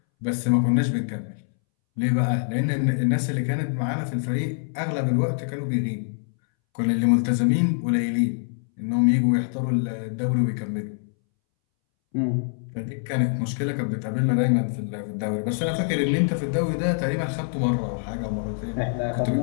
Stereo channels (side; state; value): right; silent; 62 dB below the other